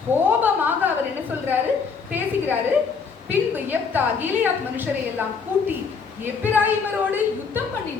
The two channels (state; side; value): quieter; right; 5.5 dB